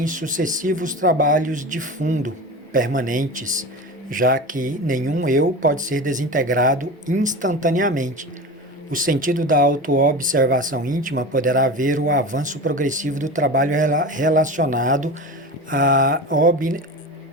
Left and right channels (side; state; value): both; normal; correlation 0.29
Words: sucessivos trabalhos de fundo, permanentes, já que nenhum eu pode ser desintegrado instantaneamente. O sentido da autoobservação íntima poderá ver o avanço progressivo do trabalho relacionado à